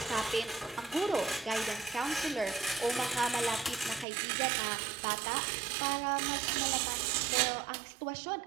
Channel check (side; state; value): left; drops out; at 4.0 s